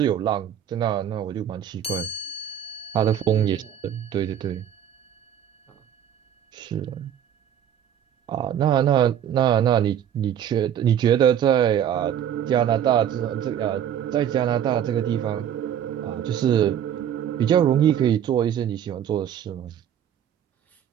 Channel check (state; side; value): quieter; left; 9.7 dB